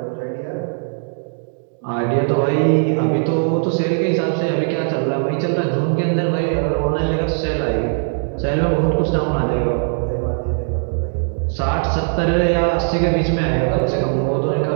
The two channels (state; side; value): silent; left; digital silence